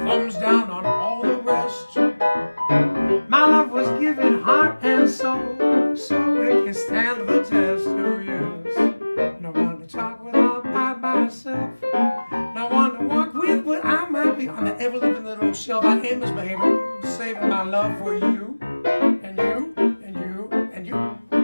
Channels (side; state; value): both; inverted; correlation -1.00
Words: down on all the rest. My love was given heart and soul, so it can stand the test. Oh yes, no one to talk without by myself. No one to walk with, but I might be on the ever-living little shelf. I ain't misbehaving, saving my love for you, and you, and you, and you.